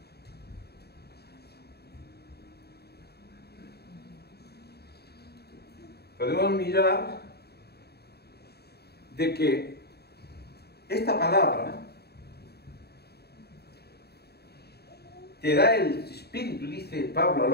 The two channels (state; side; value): late; right; 0.47 ms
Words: mirar de que esta palabra te da el Espíritu, dice Pablo a